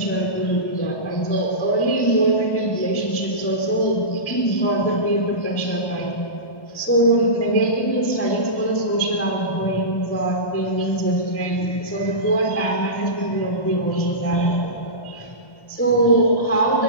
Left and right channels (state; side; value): late; right; 1.1 ms